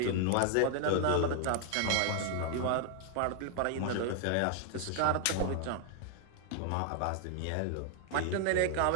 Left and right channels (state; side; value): different; both; correlation 0.00